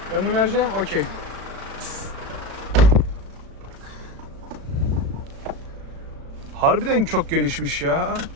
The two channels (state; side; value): late; left; 36 ms